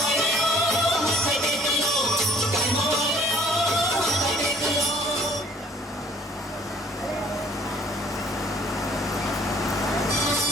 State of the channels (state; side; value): normal; both; correlation 0.57